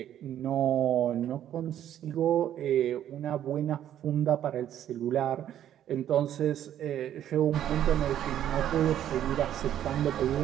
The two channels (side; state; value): left; quieter; 11.0 dB